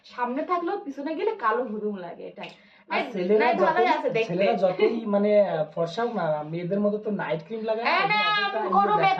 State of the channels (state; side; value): identical; both; correlation 1.00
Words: সামনে থাকলেও পিছনে গেলে কালো হুদুম লাগে, এটাই। আর নাই ভালোই আছে দেখতে। ছেলেরা যতই মানে ফর্সা হোক না, মেয়েদের মতো তো নাইট ক্রিম লাগায় না, এই ওই না, জন্য অতটা কোনো দেখায়